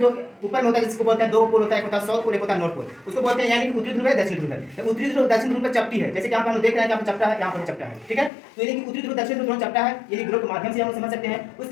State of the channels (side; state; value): right; drops out; at 8.3 s